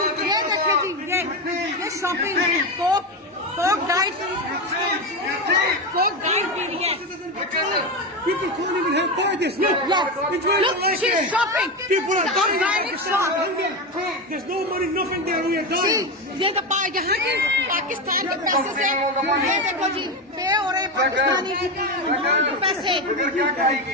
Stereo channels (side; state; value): both; normal; correlation 0.15